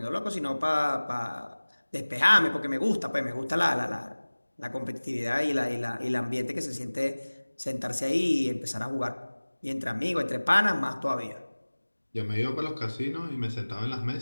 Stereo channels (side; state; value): both; inverted; correlation -1.00